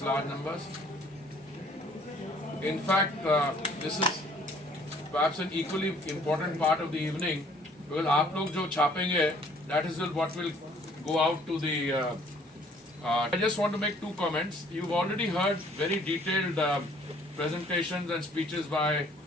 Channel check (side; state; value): both; normal; correlation 0.58